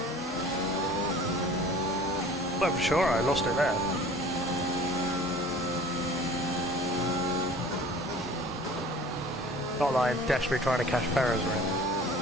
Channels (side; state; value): both; normal; correlation 0.46